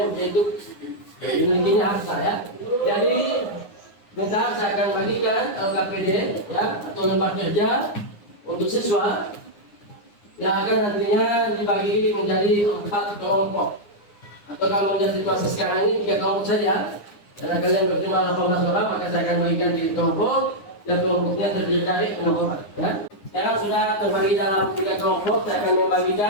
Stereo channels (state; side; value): late; right; 9.7 ms